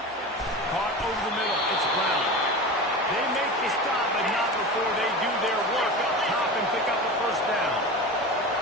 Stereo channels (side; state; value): both; normal; correlation 0.29